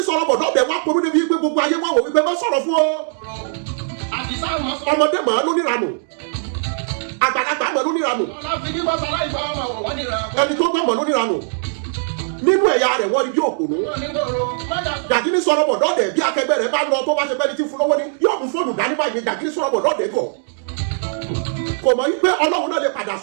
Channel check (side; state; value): left; silent; digital silence